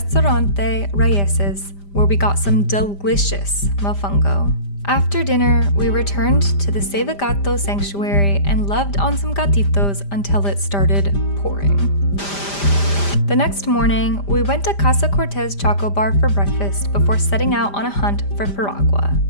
Raíces, where we got some delicious mofongo. After dinner, we returned to the Save Gato sanctuary and loved on some gatitos until it started pouring. The next morning, we went to Casa Cortez Choco Bar for breakfast before setting out on a hunt for piragua.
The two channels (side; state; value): right; late; 5.0 ms